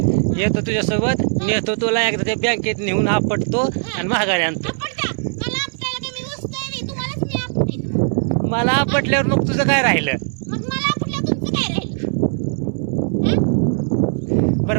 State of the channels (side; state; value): left; silent; digital silence